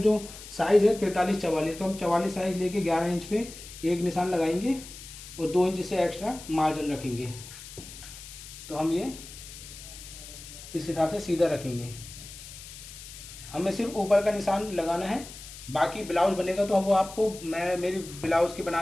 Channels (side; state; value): left; noise; hiss, 14 dB below the sound